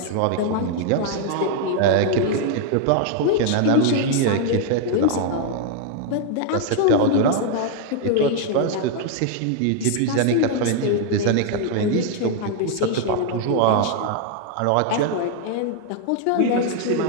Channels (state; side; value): different; both; correlation 0.00